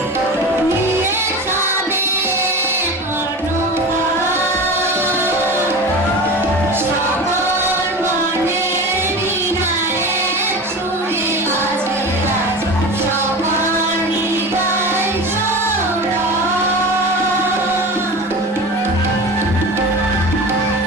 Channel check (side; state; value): both; normal; correlation 0.31